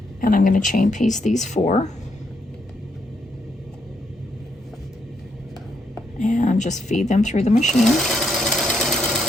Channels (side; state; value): both; normal; correlation 0.77